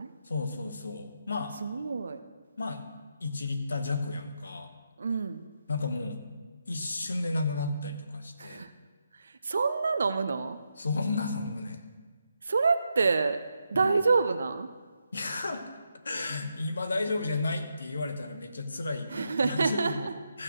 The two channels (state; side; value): inverted; both; correlation -0.83